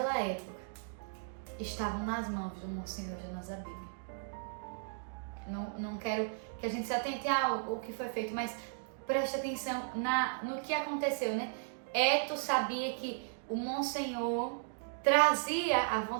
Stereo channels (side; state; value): left; silent; digital silence